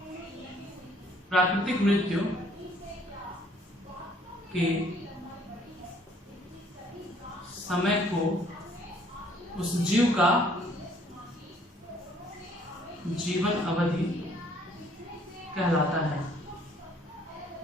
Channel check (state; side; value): normal; both; correlation 0.61